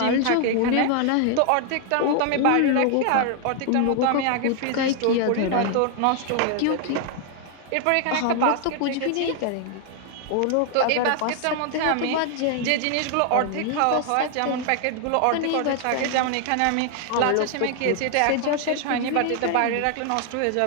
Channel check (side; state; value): both; different; correlation 0.00